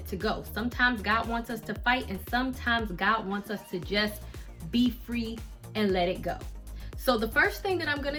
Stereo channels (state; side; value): identical; both; correlation 1.00